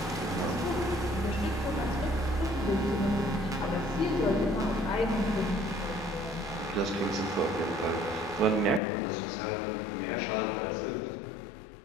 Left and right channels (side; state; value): right; drops out; at 8.8 s